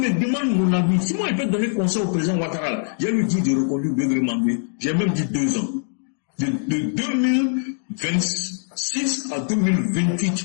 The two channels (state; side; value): silent; right; digital silence